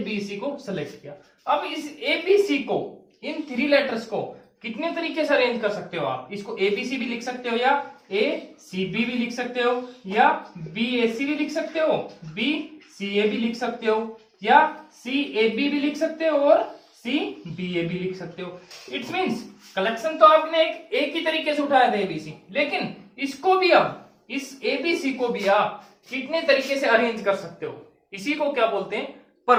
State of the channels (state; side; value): identical; both; correlation 1.00